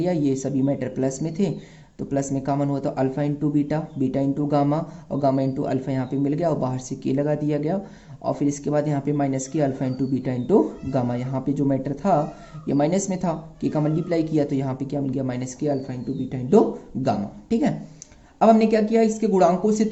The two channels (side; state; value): both; identical; correlation 1.00